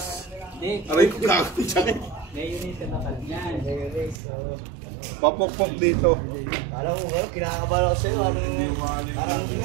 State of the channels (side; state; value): left; drops out; at 4.2 s